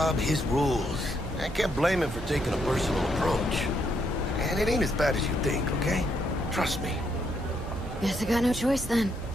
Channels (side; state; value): both; normal; correlation 0.75